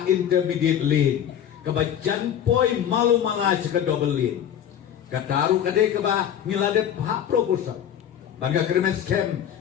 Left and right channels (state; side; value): quieter; right; 9.7 dB